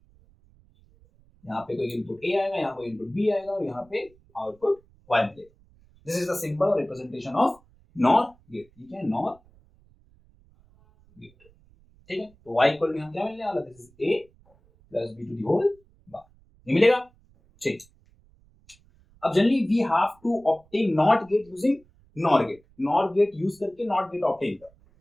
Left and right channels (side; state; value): right; noise; rumble, 30 dB below the sound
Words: यहाँ पे कोई इनपुट ए आएगा, यहाँ कोई इनपुट बी आएगा, और यहाँ पे आउटपुट y मिलेगा। दिस इज द सिंबल और रिप्रेजेंटेशन ऑफ नॉर गेट। ठीक है, नॉर गेट। ठीक है, तो y इक्वल टू यहाँ क्या मिलने वाला? This is a plus b to the whole bar, ये मिलेगा। ठीक, अब generally we have to obtain NOT gate using NOR gate. NOR gate use करके नॉट गेट ऑब्टेन कर,